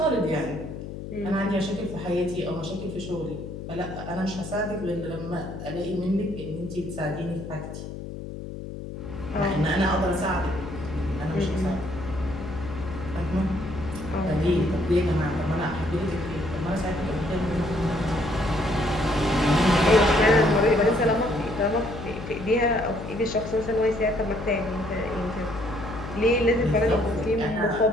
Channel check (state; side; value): noise; left; hum, 9 dB below the sound